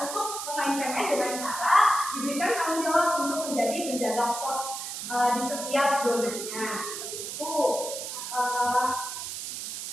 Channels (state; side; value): noise; right; hiss, 6 dB below the sound